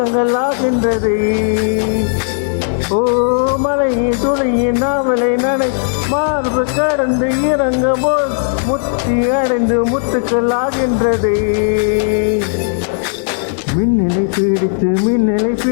ஆகின்றது. ஓ மலையின் துளையின் நாவலை நடை மார்பு கடந்து இறங்கும் போல் முத்தி அடைந்து முத்துக்கள் ஆகின்றது. மின்னலை பிடித்து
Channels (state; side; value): silent; right; digital silence